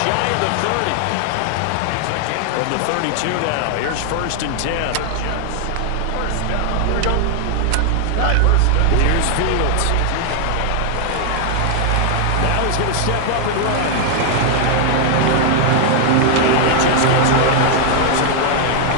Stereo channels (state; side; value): different; both; correlation 0.00